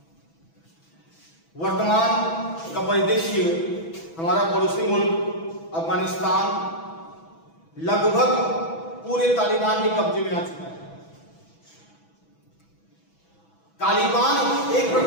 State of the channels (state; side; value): late; right; 6.1 ms